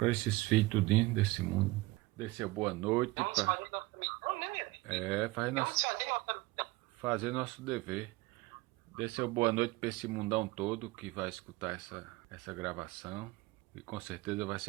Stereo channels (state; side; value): quieter; left; 21.0 dB